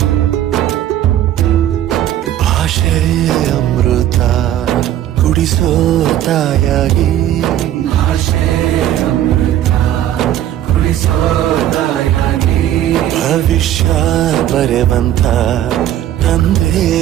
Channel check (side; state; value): left; quieter; 12.0 dB